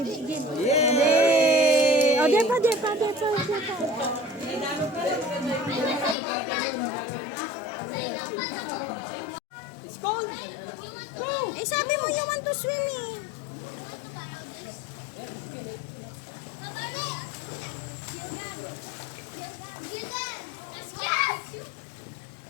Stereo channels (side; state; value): right; drops out; at 6.2 s